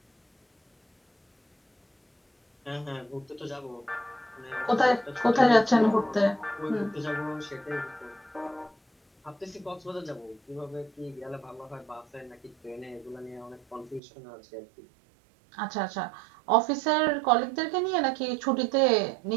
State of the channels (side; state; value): left; drops out; at 14.0 s